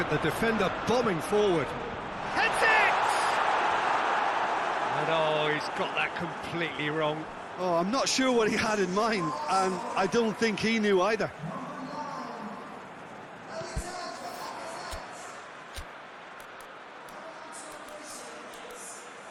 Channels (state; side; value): identical; both; correlation 1.00